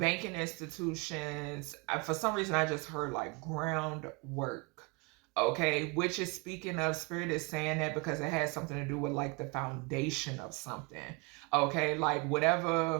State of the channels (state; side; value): quieter; left; 28.9 dB